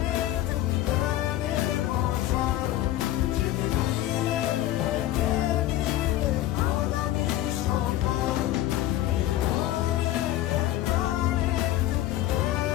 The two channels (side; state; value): right; quieter; 14.2 dB